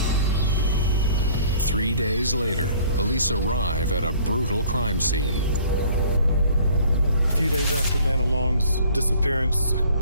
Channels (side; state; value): both; inverted; correlation -0.54